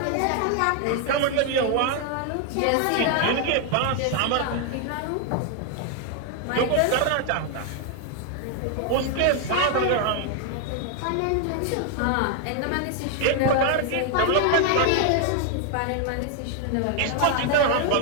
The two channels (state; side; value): different; both; correlation 0.00